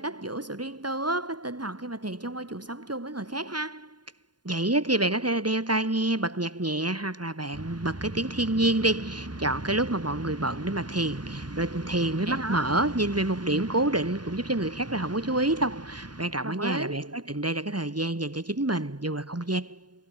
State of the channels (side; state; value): left; late; 0.70 ms